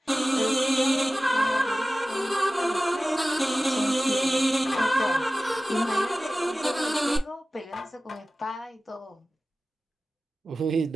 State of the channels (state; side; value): normal; both; correlation 0.96